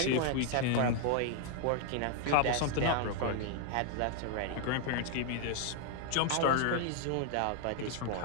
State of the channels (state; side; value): different; both; correlation 0.00